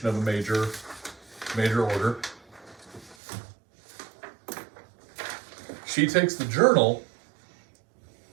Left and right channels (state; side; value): drops out; left; at 3.2 s